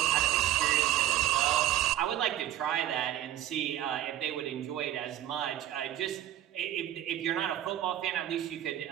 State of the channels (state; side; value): quieter; left; 12.6 dB